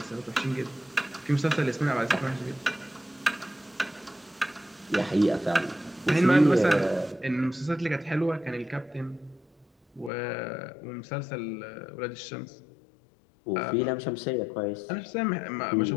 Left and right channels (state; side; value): drops out; right; at 10.1 s